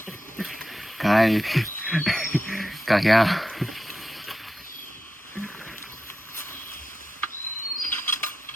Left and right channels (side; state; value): both; normal; correlation 0.88